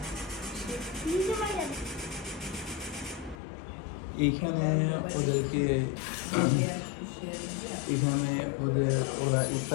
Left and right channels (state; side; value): drops out; right; at 3.4 s